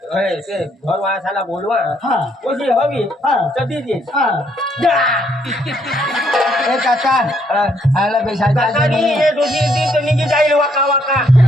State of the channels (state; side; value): normal; both; correlation 0.70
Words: ते घर वासाला बोलवा हा. कुशी हवी हा. कधी दे हा ए काका आयला बेसायका काकानी हे दोषी दिन तर निघी जाईल वाका वाका